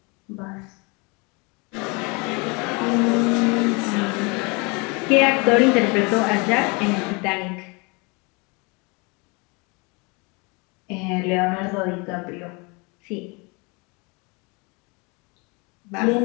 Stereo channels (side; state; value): right; quieter; 29.3 dB